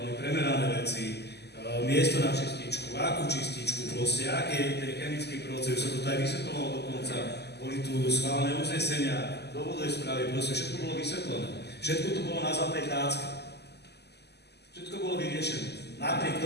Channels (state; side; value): late; right; 0.49 ms